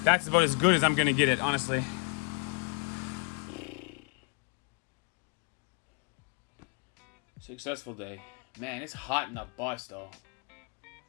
That's about as good as I'm gonna get it, honestly. Successful day. Man, it's hot in the bus though.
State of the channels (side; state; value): right; quieter; 35.8 dB